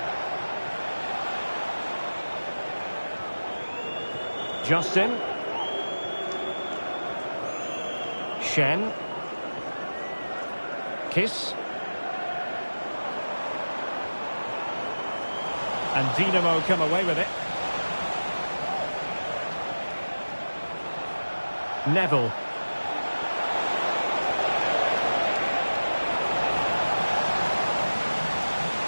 Justin. Shen. Kiss. And Dinamo come away with it. Neville.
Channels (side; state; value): both; inverted; correlation -1.00